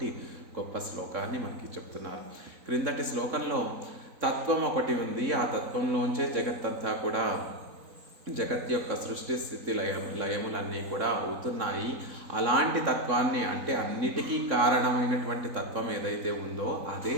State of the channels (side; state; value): left; late; 3.9 ms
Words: గొప్ప శ్లోకాన్ని మనకి చెప్తున్నారు. క్రిందటి శ్లోకంలో తత్వం ఒకటి ఉంది, ఆ తత్వంలోంచే జగత్తంతా కూడా జగత్ యొక్క సృష్టి స్థితి లయములన్నీ కూడా అవుతున్నాయి. అలాంటి తత్వాన్ని అంటే అన్నిటికీ కారణమైనటువంటి తత్వం ఏదైతే ఉందో అదే